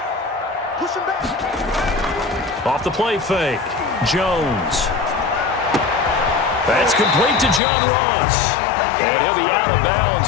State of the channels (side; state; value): right; drops out; at 7.6 s